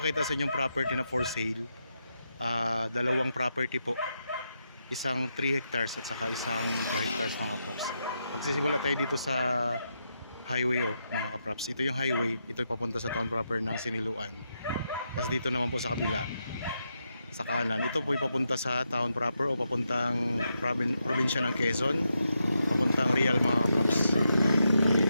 sa inyong property na for sale. Dalawang property po. Isang 3 hectares at saka isang 2 hectares mga kaprops. Magsisimula tayo dito sa highway mga kaprops. Ito yung highway. Ito yung papunta sa town proper ng Siniloan. Tapos dito naman po sa kabila, sa kanan, ito po yung papunta sa town proper o papuntang probinsya ng Quezon. Papuntang Real mga kaprops.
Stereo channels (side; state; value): both; inverted; correlation -0.84